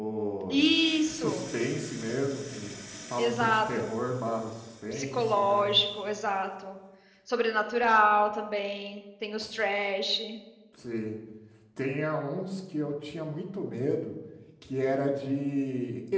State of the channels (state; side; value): identical; both; correlation 1.00